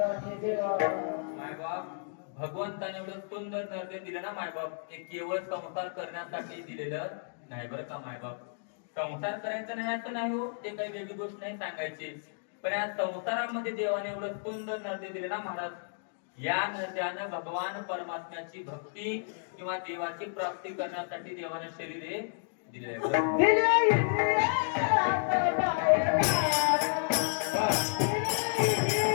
मायबाप भगवंताने एवढं सुंदर नर्दे दिलं ना मायबाप, ते केवळ संसार करण्यासाठी दिलेलं नाही बरं का मायबाप. संसार करायचा नाही असं नाही हो, ते काही वेगळी गोष्ट नाही सांगायची, पण या संसारामध्ये देवाने एवढं सुंदर नर्दे दिले ना महाराज, या नद्यानं भगवान परमात्म्याची भक्ती किंवा देवाची प्राप्ती करण्यासाठी देवाने शरीरे दिले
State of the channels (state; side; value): silent; right; digital silence